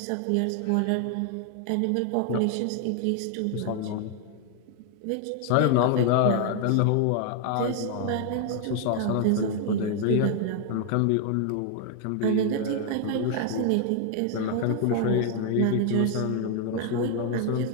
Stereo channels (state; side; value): different; both; correlation 0.00